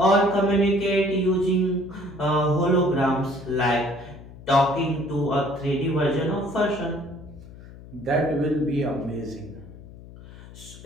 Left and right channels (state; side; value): noise; left; hum, 18 dB below the sound